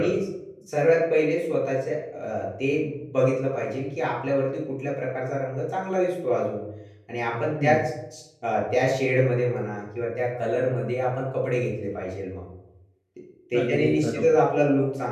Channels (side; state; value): both; identical; correlation 1.00